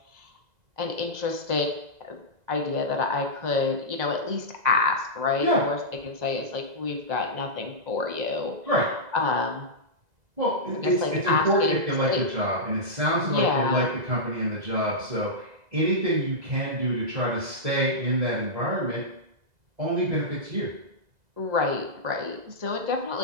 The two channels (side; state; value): left; late; 2.0 ms